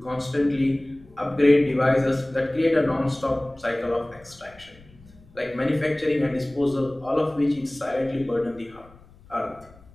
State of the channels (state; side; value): noise; left; rumble, 25 dB below the sound